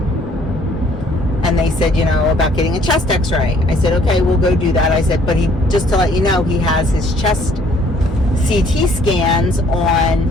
And they said, you know, about getting a chest x-ray. I said, okay, we'll go do that. I said, but just to let you know, he has his chest CT scans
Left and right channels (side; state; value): both; normal; correlation 0.60